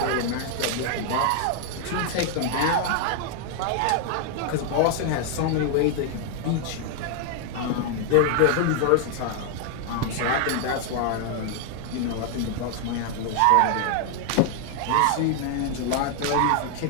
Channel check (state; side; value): different; both; correlation 0.00